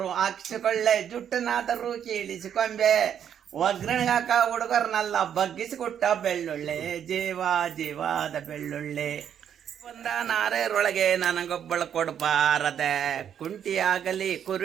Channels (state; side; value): quieter; left; 9.0 dB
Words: ಹಾಕಿಸಿಕೊಳ್ಳೆ, ಜುಟ್ಟನಾದರೂ ಕೀಳಿಸಿಕೊಂಬೆ, ಒಗ್ಗರಣೆಗಾಕ ಹುಡುಗರನ್ನೆಲ್ಲ ಬಗ್ಗಿಸಿಕೊಟ್ಟ ಬೆಳ್ಳುಳ್ಳಿ, ಜೀವ ಜೀವಾದ ಬೆಳ್ಳುಳ್ಳಿ. ಬಂದ ನಾರೇರೊಳಗೆ ನನಗೊಬ್ಬಳು ಕೊಡಬಾರದೆ, ಕುಂಟಿಯಾಗಲಿ